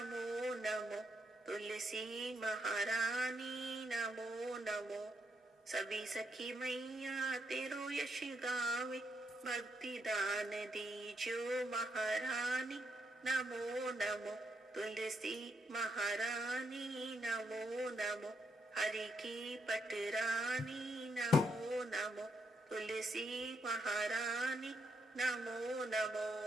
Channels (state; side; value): normal; both; correlation 0.79